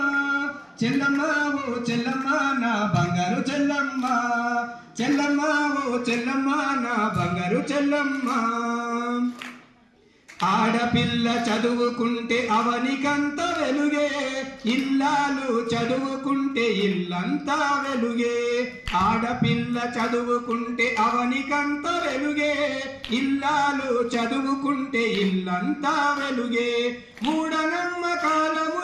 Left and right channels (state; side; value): identical; both; correlation 1.00